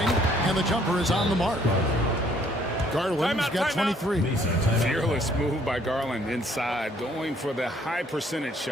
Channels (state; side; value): normal; both; correlation 0.63